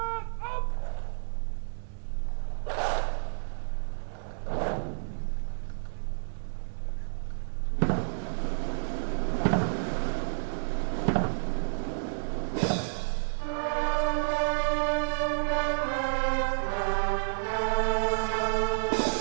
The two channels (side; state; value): left; silent; 58 dB below the other